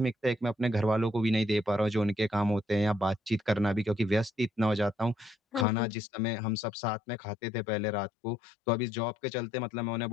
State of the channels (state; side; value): drops out; right; at 5.7 s